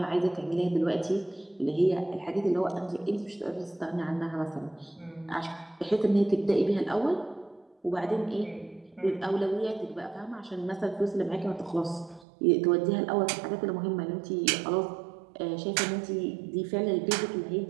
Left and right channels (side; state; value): left; drops out; at 12.2 s